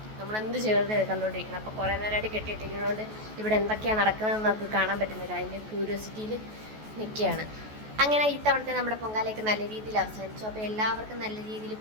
നമ്മളെന്ത് ചെയ്തത് കണ്ടുകൊണ്ടിരിക്കണം. അപ്പോൾ കുറേ നേരമായിട്ട് കെട്ടിയിട്ടിരിക്കുന്നതുകൊണ്ട് ഇവിടെ എന്തൊക്കെയാണ് നടക്കുന്നതെന്ന് നമുക്ക് കാണാൻ പറ്റുന്നില്ല. അതിൻ്റെ ക്യൂരിയോസിറ്റിയിൽ നിൽക്കുകയാണ്. അങ്ങനെ ഇത്തവണത്തെ നമ്മുടെ പൊങ്കാലയൊക്കെ നല്ല രീതിയിൽ അവസാനിച്ചു. അപ്പോൾ എല്ലാവർക്കും നല്ല രീതിയിൽ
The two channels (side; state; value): left; late; 14 ms